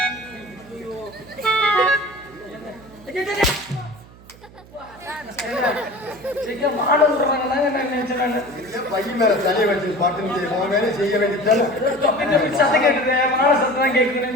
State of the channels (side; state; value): right; noise; hum, 22 dB below the sound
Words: பையன் மேல தலையை வச்சு பாட்டு வேலை செய்ய வேண்டியது. சத்தம் கேட்டுது. வாழை சத்தம் கேட்குது.